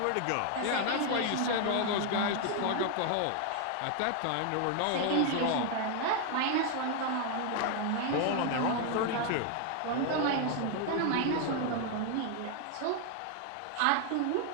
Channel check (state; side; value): different; both; correlation 0.00